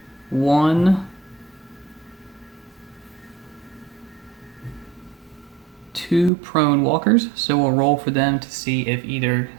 2 prone walkers, so we'll roll for them to see if either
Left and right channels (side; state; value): left; drops out; at 6.3 s